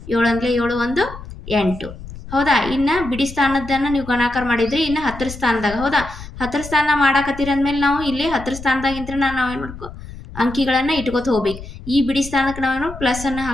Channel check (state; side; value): noise; left; rumble, 13 dB below the sound